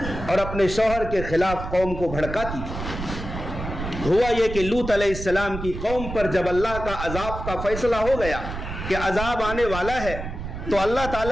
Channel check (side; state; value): right; noise; rumble, 7 dB below the sound